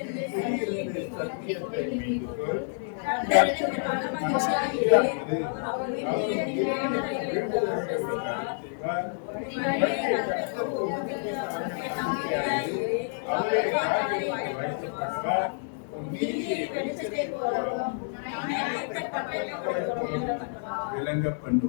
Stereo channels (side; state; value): right; silent; digital silence